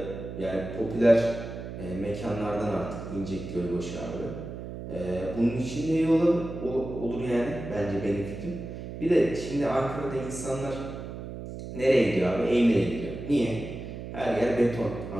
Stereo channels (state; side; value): noise; right; hum, 9 dB below the sound